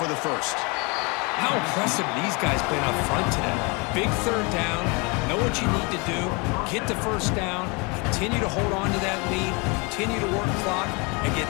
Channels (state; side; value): quieter; right; 29.6 dB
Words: the first. How impressive these guys been up front today. Big third down, know what you need to do, get the first down, continue to hold on to that lead, continue to work clock, and get